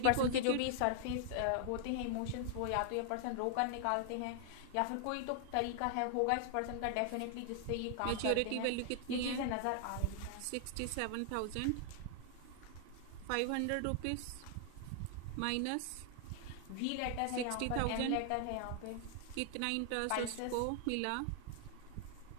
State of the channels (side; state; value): both; different; correlation 0.00